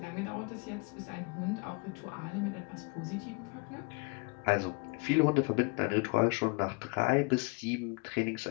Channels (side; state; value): right; quieter; 32.5 dB